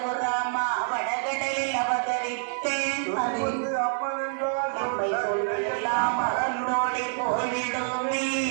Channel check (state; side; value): silent; left; digital silence